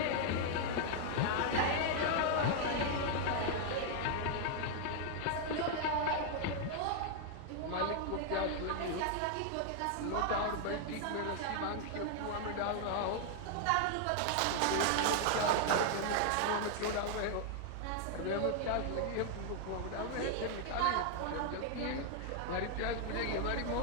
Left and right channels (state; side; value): different; both; correlation 0.00